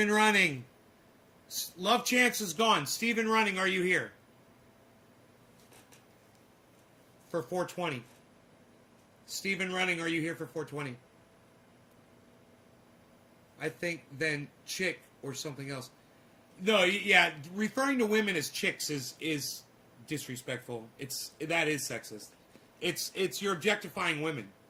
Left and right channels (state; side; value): identical; both; correlation 1.00